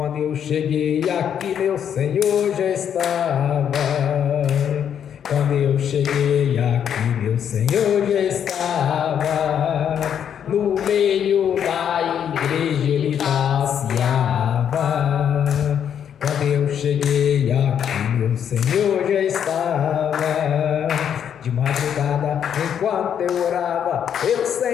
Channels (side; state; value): right; quieter; 8.7 dB